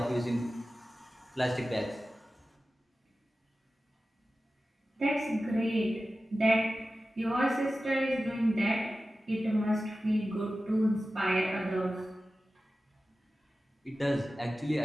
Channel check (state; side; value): normal; both; correlation 0.95